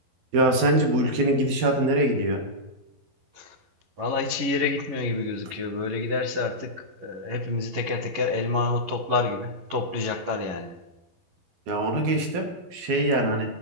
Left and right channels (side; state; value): left; late; 12 ms